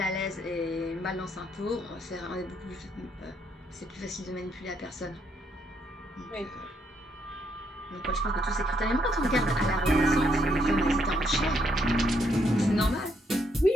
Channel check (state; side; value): normal; both; correlation 0.73